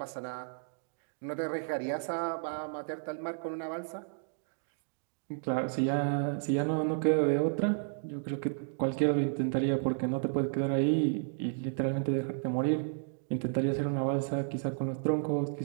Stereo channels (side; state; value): left; silent; digital silence